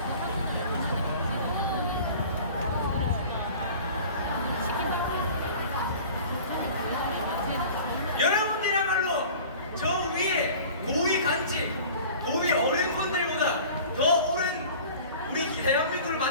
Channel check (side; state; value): both; inverted; correlation -0.43